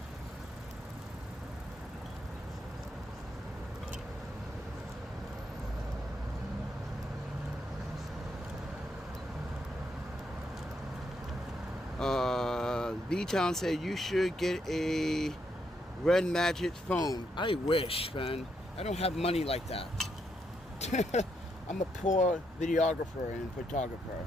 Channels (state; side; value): normal; both; correlation 0.78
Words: V-Town said you should get a Red Magic phone. I wish, man. I don't have money like that. I'm a poor videographer and photographer.